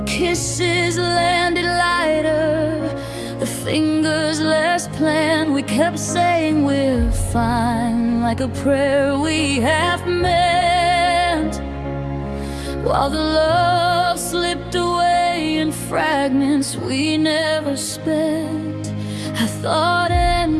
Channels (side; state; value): both; identical; correlation 1.00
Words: kisses landed lighter, the fingers less planned. We kept saying we're fine, like a prayer we half meant, while the love slipped away in fragments we never spent. I thought